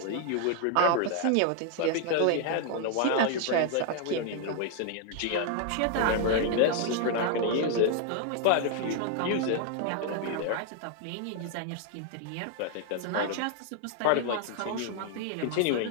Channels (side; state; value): both; different; correlation 0.00